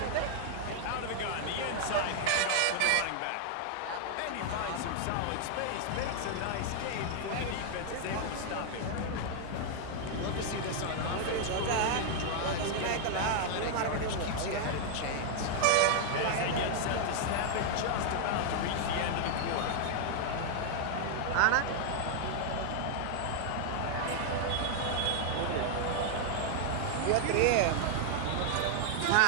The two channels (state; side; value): different; both; correlation 0.00